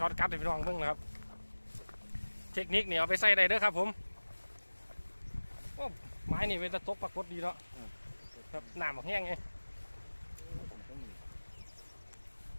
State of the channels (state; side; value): inverted; both; correlation -1.00